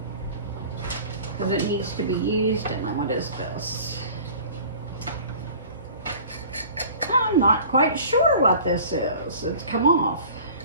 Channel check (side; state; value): both; inverted; correlation -0.44